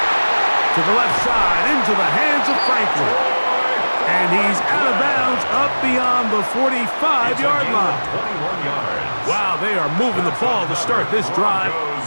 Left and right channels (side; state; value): both; inverted; correlation -1.00